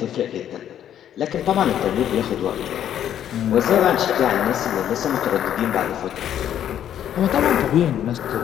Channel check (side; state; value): right; quieter; 10.4 dB